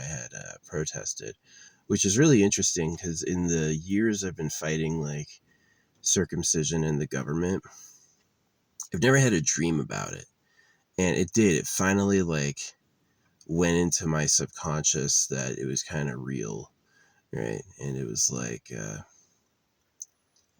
had protested, which is really interesting because in the years I've been fighting like circumcision in the government, I've never had a dream about it. And it did. It finally like went into my subconscious that it was kind of real, right? And it was like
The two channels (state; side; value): identical; both; correlation 1.00